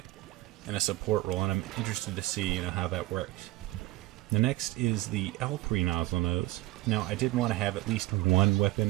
in a support role, and I'm interested to see, you know, how that works. The next is the L3 Nozzle Nose. Now, I did want to have at least one weapon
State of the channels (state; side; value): quieter; left; 18.9 dB